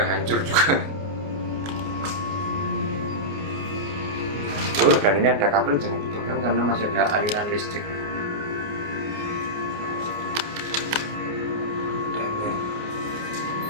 hancur juga. Oh, dan ini ada kabel, jangan dipegang karena masih ada aliran listrik. Dan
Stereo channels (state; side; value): late; left; 29 ms